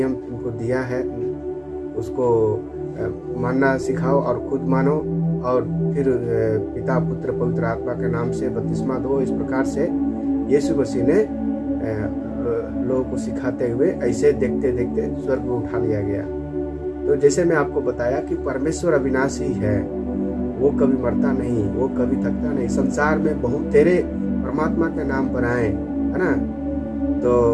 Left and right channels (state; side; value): identical; both; correlation 1.00